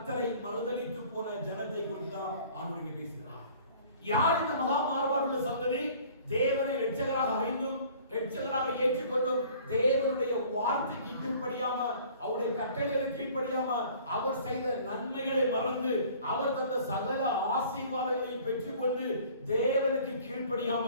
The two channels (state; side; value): inverted; both; correlation -0.51